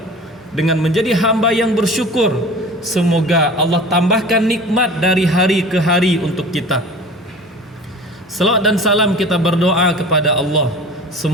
Dengan menjadi hamba yang bersyukur, semoga Allah tambahkan nikmat dari hari ke hari untuk kita. Salawat dan salam kita berdoa kepada Allah,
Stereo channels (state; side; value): normal; both; correlation 0.40